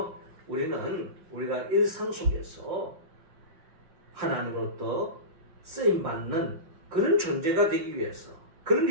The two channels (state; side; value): late; left; 5.4 ms